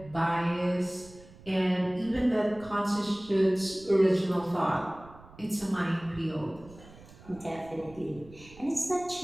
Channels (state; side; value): noise; right; rumble, 21 dB below the sound